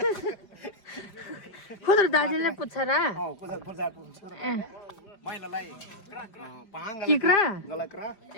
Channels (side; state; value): right; late; 5.1 ms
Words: खुद दाजुले पुच्छर ए किक्रा